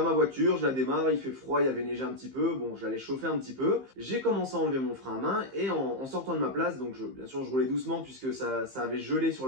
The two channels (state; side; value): late; left; 15 ms